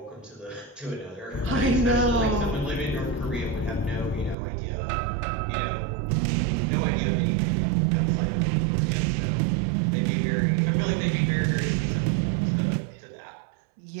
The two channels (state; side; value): drops out; left; at 4.4 s